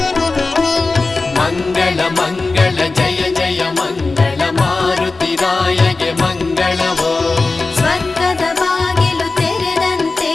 ಮಂಗಳ ಮಂಗಳ ಜಯ ಜಯ ಮಂಗಳ ಮಾರುತಿರಾಯಗೆ ಮಂಗಳವೋ. ಸ್ವರ್ಗದ ಬಾಗಿಲು ತೆರೆದಂತೆ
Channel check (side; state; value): right; quieter; 3.7 dB